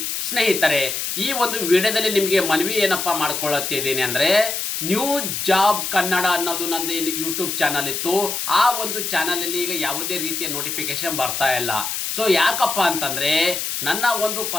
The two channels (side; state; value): left; noise; hiss, 3 dB below the sound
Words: ಸ್ನೇಹಿತರೆ, ಈ ಒಂದು ವಿಡಿಯೋದಲ್ಲಿ ನಿಮಗೆ ಮನವಿ ಏನಪ್ಪ ಮಾಡ್ಕೊಳ್ಳುತ್ತಿದ್ದೀನಿ ಅಂದರೆ, ನ್ಯೂ ಜಾಬ್ ಕನ್ನಡ ಅನ್ನೋದು ನಂದು ಯೂಟ್ಯೂಬ್ ಚಾನಲ್ ಇತ್ತು. ಆ ಒಂದು ಚಾನಲಲ್ಲಿ ಈಗ ಯಾವುದೇ ರೀತಿಯ ನೋಟಿಫಿಕೇಶನ್ ಬರ್ತಾ ಇಲ್ಲ. ಸೊ ಯಾಕಪ್ಪ ಅಂತಂದರೆ, ನನ್ನ ಒಂದು